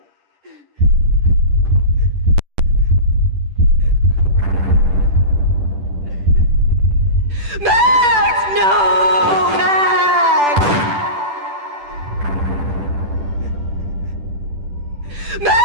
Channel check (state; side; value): late; left; 10 ms